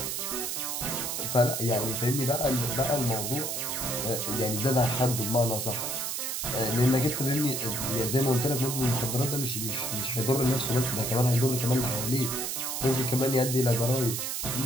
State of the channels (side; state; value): right; noise; hiss, 2 dB below the sound